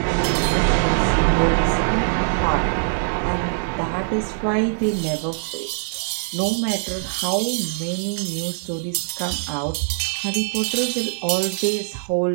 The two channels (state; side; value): silent; left; digital silence